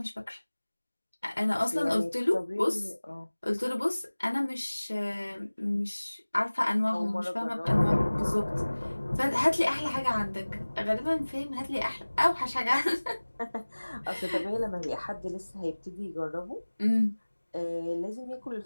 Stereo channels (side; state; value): both; inverted; correlation -1.00